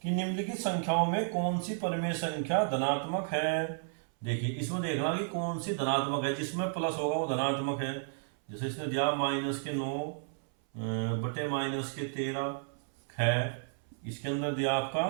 कि निम्नलिखित संख्याओं में कौन सी परिमेय संख्या धनात्मक है। देखिए इसमें देखना कि कौन सी धनात्मक है, जिसमें प्लस होगा वो धनात्मक है। जैसे इसने दिया माइनस के 9 बटे माइनस के 13 है, इसके अंदर दिया आपका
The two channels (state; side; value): silent; left; 56 dB below the other